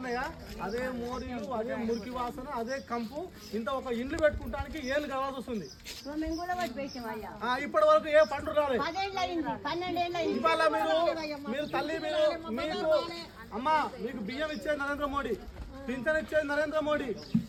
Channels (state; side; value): identical; both; correlation 1.00